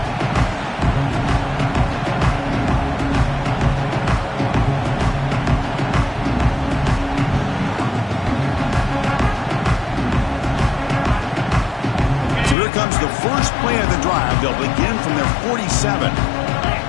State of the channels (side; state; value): right; drops out; at 12.6 s